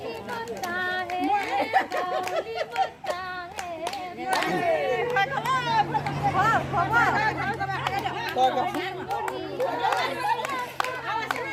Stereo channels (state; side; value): identical; both; correlation 1.00